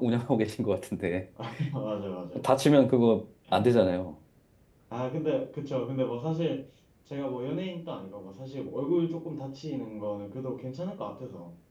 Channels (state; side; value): identical; both; correlation 1.00